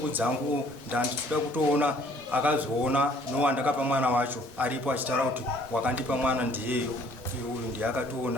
dzangu ndandichida kutoona akazoona nowandakapa mwana wacho aripo achitaura kuti wakandipa mwana ndiyeyo, uyu ndiye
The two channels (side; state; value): both; normal; correlation 0.59